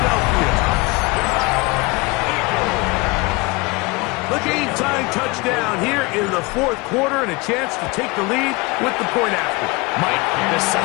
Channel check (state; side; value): quieter; right; 25.4 dB